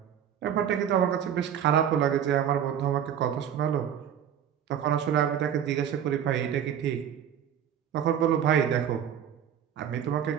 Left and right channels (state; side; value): quieter; left; 9.3 dB